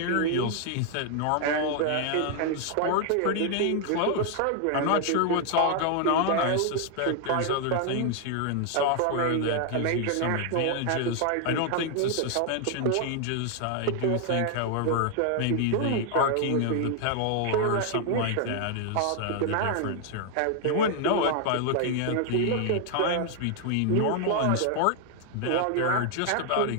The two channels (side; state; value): both; different; correlation 0.00